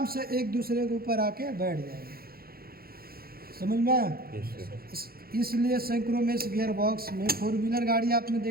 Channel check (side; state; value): left; late; 0.44 ms